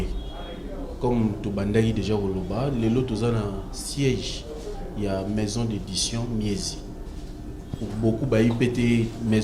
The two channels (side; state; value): both; identical; correlation 1.00